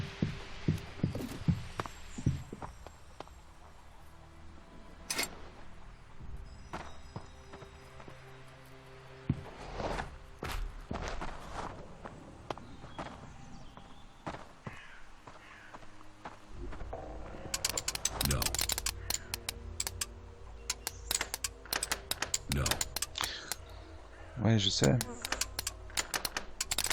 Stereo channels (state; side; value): identical; both; correlation 1.00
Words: Ouais, je sais.